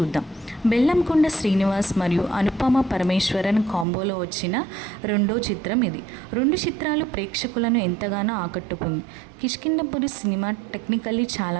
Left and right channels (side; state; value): left; drops out; at 3.9 s